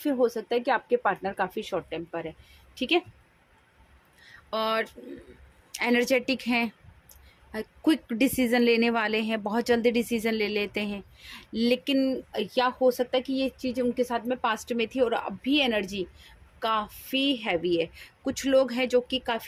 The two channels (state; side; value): identical; both; correlation 1.00